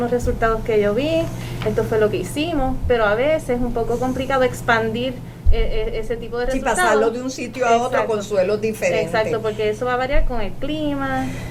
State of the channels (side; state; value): both; identical; correlation 1.00